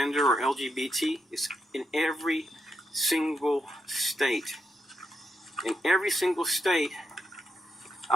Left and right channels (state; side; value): normal; both; correlation 0.82